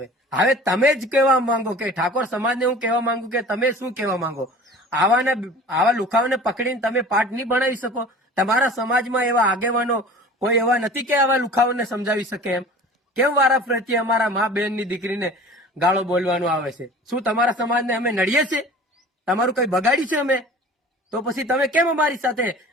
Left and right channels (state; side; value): normal; both; correlation 0.42